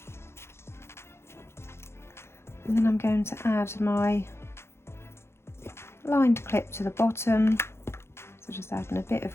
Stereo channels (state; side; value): late; right; 0.12 ms